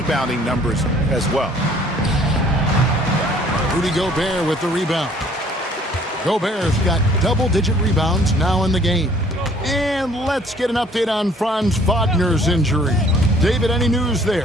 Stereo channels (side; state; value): both; normal; correlation 0.57